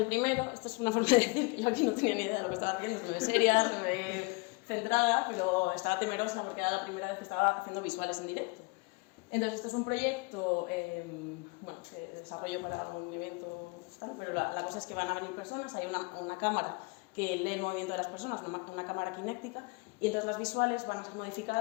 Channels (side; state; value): right; quieter; 27.9 dB